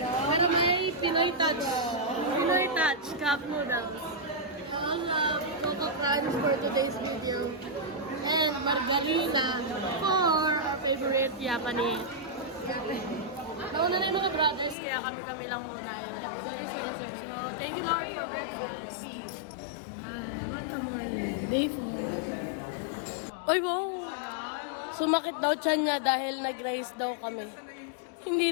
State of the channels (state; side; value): drops out; right; at 14.8 s